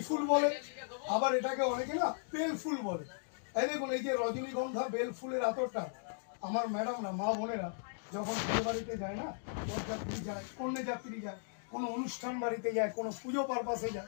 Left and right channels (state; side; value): silent; right; digital silence